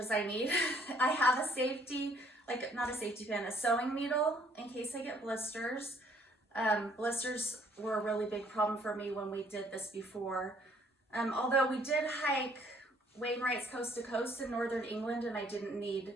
I need. I have a safety, like not a safety pin, a sewing needle in case I get blisters. Blisters were a really big problem for me when we did this before. Although we did hike Wainwright's Coast to Coast in northern England and I didn't need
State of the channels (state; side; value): normal; both; correlation 0.62